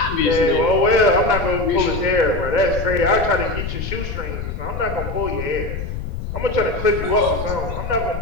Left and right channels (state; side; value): noise; left; rumble, 6 dB below the sound